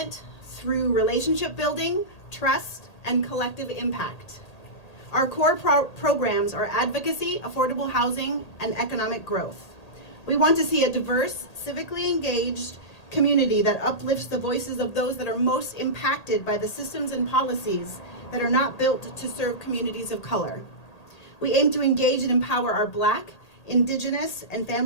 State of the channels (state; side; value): late; right; 1.8 ms